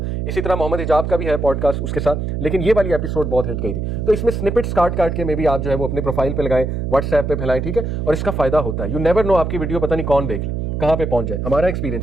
इसी तरह मोहम्मद हिजाब का भी है पॉडकास्ट उसके साथ, लेकिन ये वाली एपिसोड बहुत हिट गई थी। तो इसमें स्निपेट्स काट के में भी आप जो है वो अपने प्रोफाइल पे लगाएं, व्हाट्सएप पे फैलाएं, ठीक है, और इसका फायदा होता है। यू नेवर नो आपकी वीडियो पता नहीं कौन देख ले, कहाँ पे पहुंच जाए। हमारा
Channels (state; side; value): noise; right; hum, 2 dB below the sound